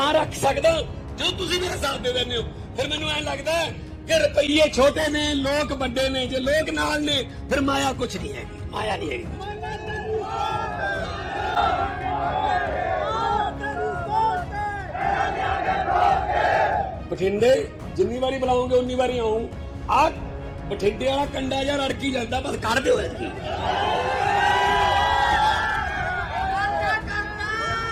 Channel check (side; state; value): both; identical; correlation 1.00